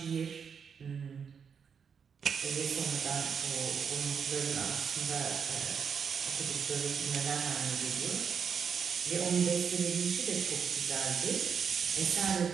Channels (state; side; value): quieter; left; 6.7 dB